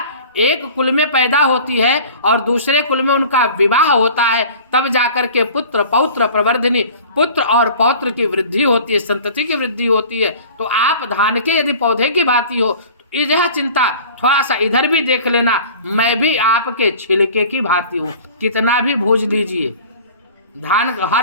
एक कुल में पैदा होती है और दूसरे कुल में उनका विवाह होता है, तब जाकर के पुत्र पौत्र प्रवर्धिनी, पुत्र और पौत्र की वृद्धि होती है, संतति की वृद्धि होती है। तो आप धान के यदि पौधे की भांति हो तो यह चिंता थोड़ा सा इधर भी देख लेना, मैं भी आपके छिलके की भांति हूँ। कितना भी भूज लीजिए, धान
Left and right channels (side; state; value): both; inverted; correlation -0.43